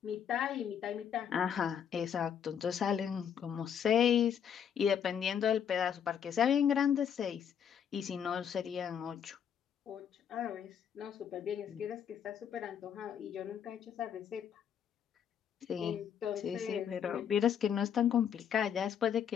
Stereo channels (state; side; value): quieter; right; 8.4 dB